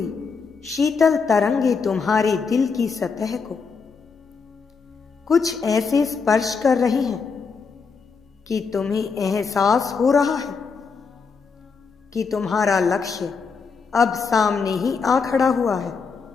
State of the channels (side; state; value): right; quieter; 5.3 dB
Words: शीतल तरंगे तुम्हारे दिल की सतह को कुछ ऐसे स्पर्श कर रही हैं कि तुम्हें एहसास हो रहा है कि तुम्हारा लक्ष्य अब सामने ही आ खड़ा हुआ है।